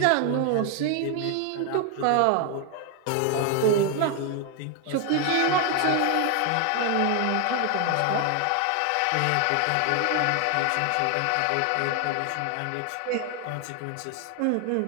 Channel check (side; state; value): both; different; correlation 0.01